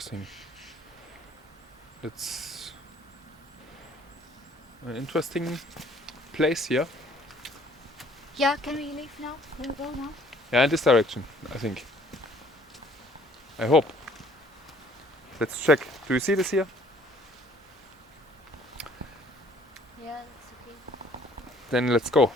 It's an interesting place here. Yeah, can we leave now? Can we go now? Yeah, in this direction, I think. I hope. Let's check. Do you see this here? Yeah, that's okay. Then let's go.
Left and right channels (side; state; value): both; normal; correlation 0.58